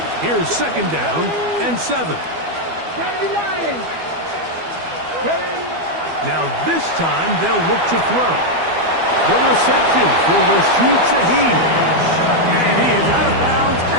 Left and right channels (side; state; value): left; late; 12 ms